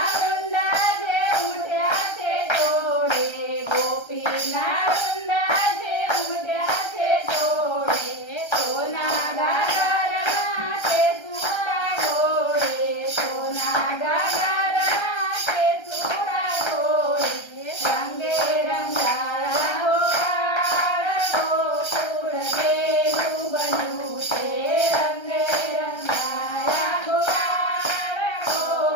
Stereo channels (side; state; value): right; late; 1.3 ms